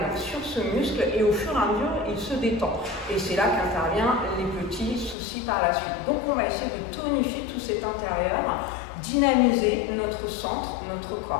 sur ce muscle et au fur et à mesure, il se détend. Et c'est là qu'interviennent les petits soucis par la suite. Donc on va essayer de tonifier tout cet intérieur, dynamiser notre centre, notre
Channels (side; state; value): right; drops out; at 5.2 s